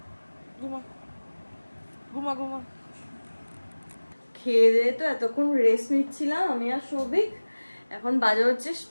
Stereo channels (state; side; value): inverted; both; correlation -1.00